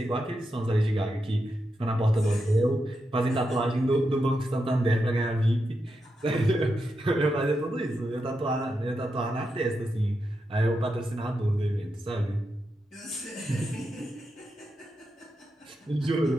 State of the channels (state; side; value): normal; both; correlation 0.86